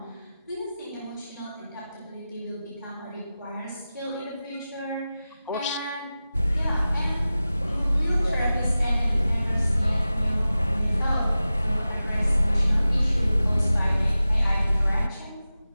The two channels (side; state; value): both; inverted; correlation -0.95